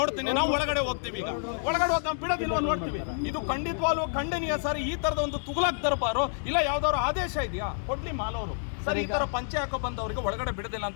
ನಾವು ಒಳಗಡೆ ಹೋಗ್ತೀವಿ. ಈಗ ಒಳಗಡೆ ಹೋದ್ ನಾವು ಬಿಡೋದಿಲ್ವ ನೋಡ್ತೀವಿ. ಇದು ಖಂಡಿತವಾಗ್ಲೂ ಖಂಡನೀಯ ಸರ್. ಈ ತರದ ಒಂದು ತುಗ್ಲಕ್ ದರ್ಬಾರು ಇಲ್ಲ, ಯಾವ್ದಾದ್ರು ಆದೇಶ ಇದೆಯಾ? ಕೊಡ್ಲಿ ಮಾಲವರು ಸರ್. ಈ ತರ ಪಂಚೆ ಹಾಕೋ ಬಂದವರಿಗೆ ಒಳಗಡೆ ಬಿಡೋದಿಲ್ಲ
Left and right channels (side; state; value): right; silent; digital silence